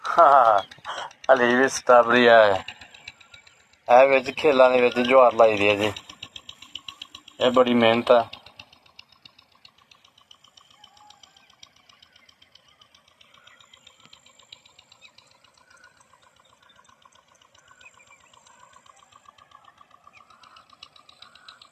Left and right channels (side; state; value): both; identical; correlation 1.00